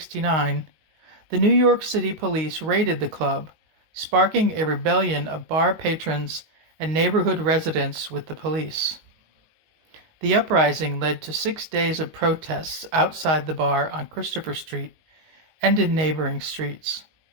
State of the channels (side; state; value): left; late; 19 ms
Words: the New York City Police raided the club, sparking a rebellion of bar patrons and neighborhood residents with the police. The uprising led to 6 days of protests outside the bar on Christopher Street and in neighboring streets.